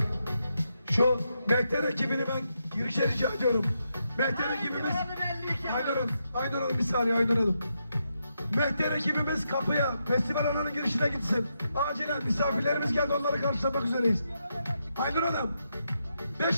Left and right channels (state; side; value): inverted; both; correlation -0.83